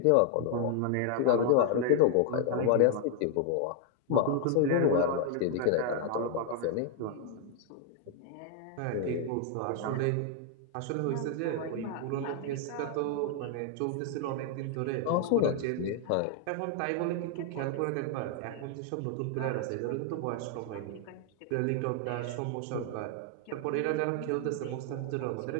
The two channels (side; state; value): both; different; correlation 0.00